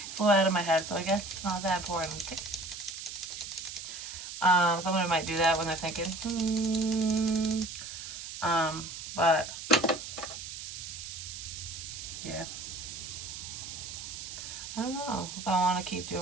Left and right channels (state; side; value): noise; right; hiss, 9 dB below the sound